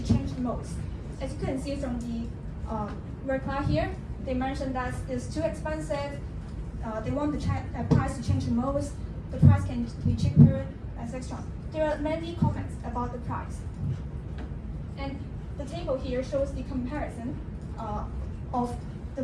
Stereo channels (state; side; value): identical; both; correlation 1.00